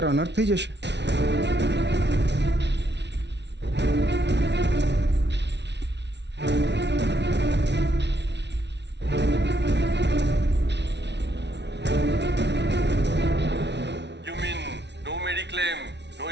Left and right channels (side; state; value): left; late; 0.50 ms